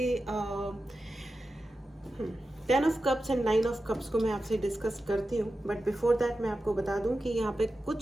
10 of Cups and 9 of Cups को मैं आपसे डिस्कस करती हूँ, बट बिफोर दैट मैं आपको बता दूं कि यहाँ पे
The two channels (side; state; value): both; normal; correlation 0.92